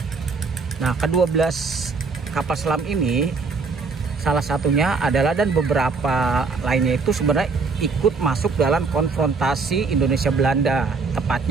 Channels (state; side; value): quieter; left; 4.5 dB